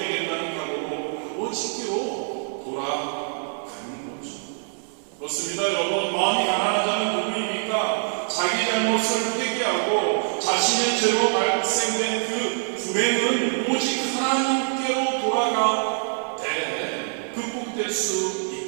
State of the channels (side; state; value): left; silent; digital silence